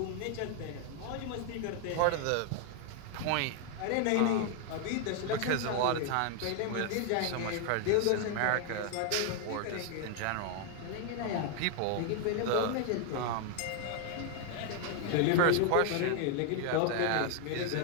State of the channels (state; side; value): different; both; correlation 0.00